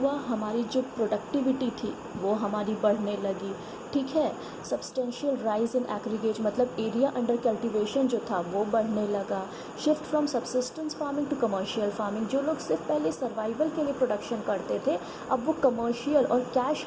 हमारी जो प्रोडक्टिविटी थी वो हमारी बढ़ने लगी। ठीक है, सब्सटेंशियल राइज इन एग्रीगेट मतलब एरिया अंडर कल्टीवेशन जो था वो बढ़ने लगा। Shift from subsistence farming to commercial farming, जो लोग सिर्फ पहले सर्वाइवल के लिए प्रोडक्शन करते थे अब वो कमर्शियल और कैश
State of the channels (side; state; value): both; identical; correlation 1.00